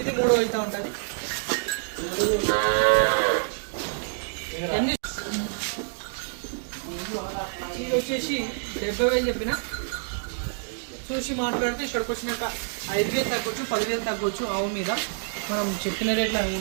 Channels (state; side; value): silent; left; digital silence